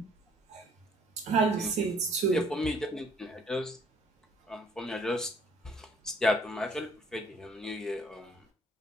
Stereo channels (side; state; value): both; normal; correlation 0.60